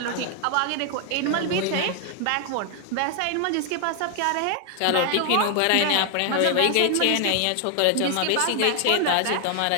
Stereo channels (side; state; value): both; different; correlation 0.00